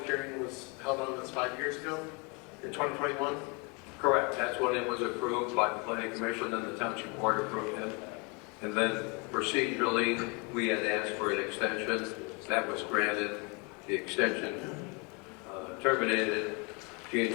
hearing was held on this 5 years ago, in 2021? Correct, that's when it was approved by the planning commission and the township board approved it. And then procedurally, we had asked for an extension, that was granted. The extension terminated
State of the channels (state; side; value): quieter; right; 31.4 dB